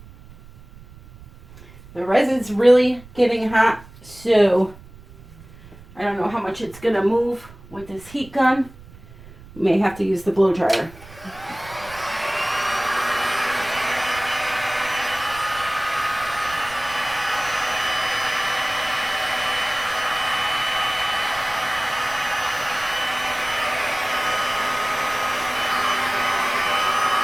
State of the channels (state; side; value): noise; right; rumble, 20 dB below the sound